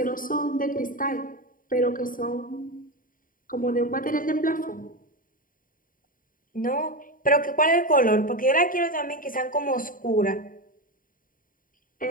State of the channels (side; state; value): right; late; 0.40 ms